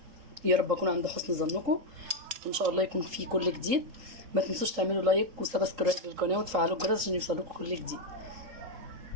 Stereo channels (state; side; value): late; left; 3.8 ms